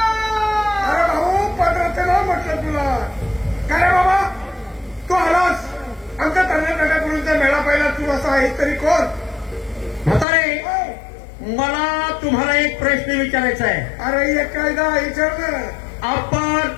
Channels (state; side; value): drops out; right; at 10.2 s